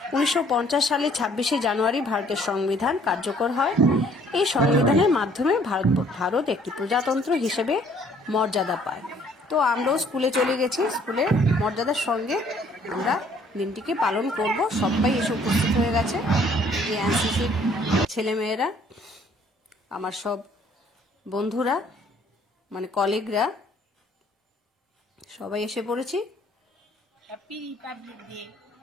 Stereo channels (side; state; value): both; normal; correlation 0.60